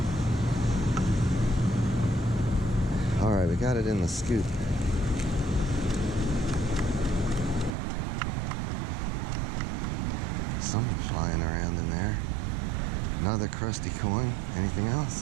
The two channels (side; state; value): left; drops out; at 7.7 s